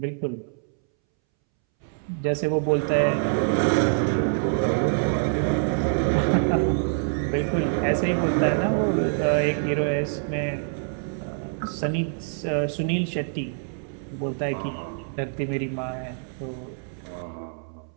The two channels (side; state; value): left; silent; 61 dB below the other